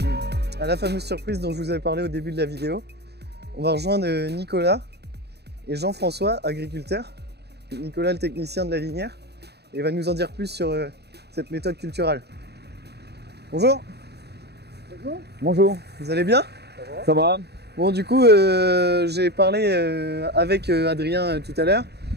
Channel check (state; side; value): late; left; 0.48 ms